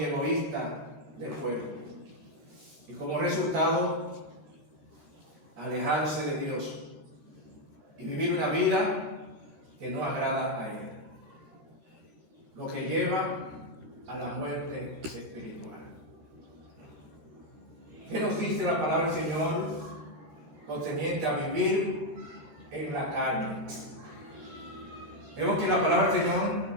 egoístas del cuerpo. Y como resultado, alejarse de Dios y vivir una vida que no agrada a Él, lo que lleva a la muerte espiritual. ¿Qué nos dice la palabra del Señor concerniente a vivir en la carne? Vemos que la palabra del Señor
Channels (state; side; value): late; left; 13 ms